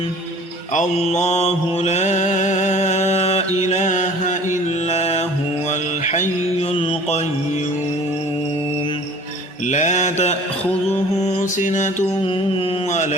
الله لا إله إلا هو الحي القيوم لا تأخذه سنة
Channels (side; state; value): both; normal; correlation 0.48